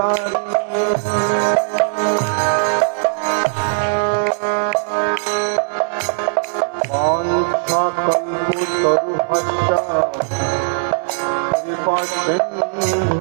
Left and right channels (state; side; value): silent; left; digital silence